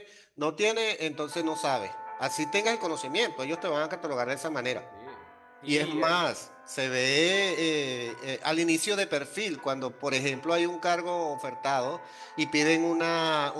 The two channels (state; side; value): identical; both; correlation 1.00